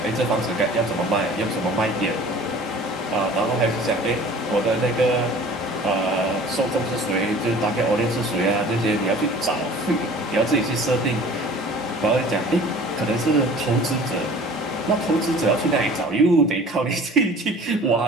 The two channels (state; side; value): normal; both; correlation 0.46